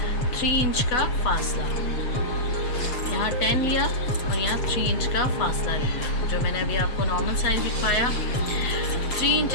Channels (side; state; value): right; late; 8.1 ms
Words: 3 इंच का फासला। यहाँ 10 लिया और यहाँ 3 इंच का फासला लिया, जो मैंने अभी आपको नॉर्मल साइज दिखाया। 3